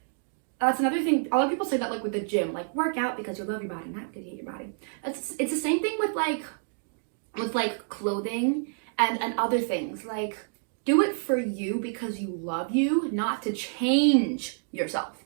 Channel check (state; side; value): silent; left; digital silence